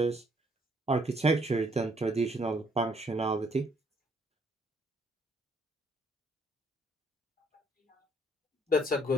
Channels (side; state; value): both; normal; correlation 0.66